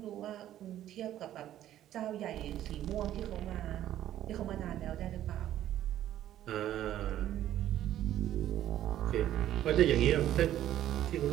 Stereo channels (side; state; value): left; quieter; 12.3 dB